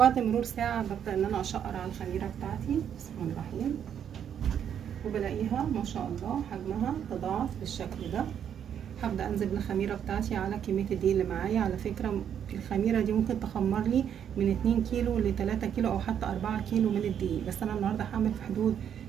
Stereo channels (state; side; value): quieter; left; 8.8 dB